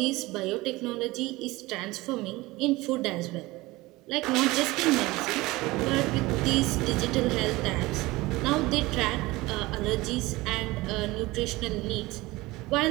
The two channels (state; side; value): quieter; left; 20.4 dB